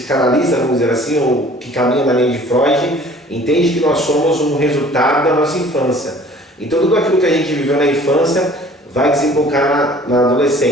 vamos dizer assim, ou que caminha na linha de Freud, entende que nós somos um resultado da nossa infância. Então tudo aquilo que a gente viveu na infância vai desembocar na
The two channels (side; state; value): both; normal; correlation 0.51